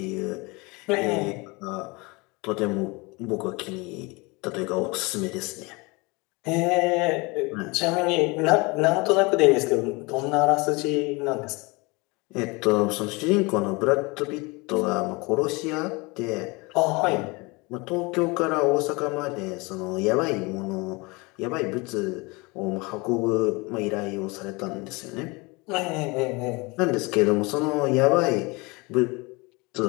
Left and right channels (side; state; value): right; quieter; 26.2 dB